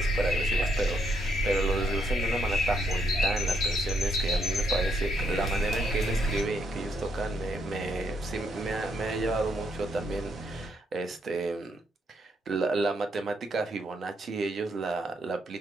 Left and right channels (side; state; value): both; normal; correlation 0.75